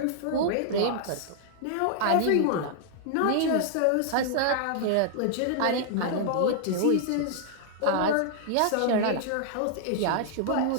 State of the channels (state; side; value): different; both; correlation -0.01